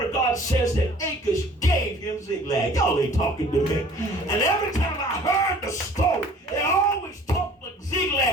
of God says that Achish gave him ziglag. Y'all ain't talking to me. And every time I heard the story, they always talked like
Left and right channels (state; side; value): normal; both; correlation 0.50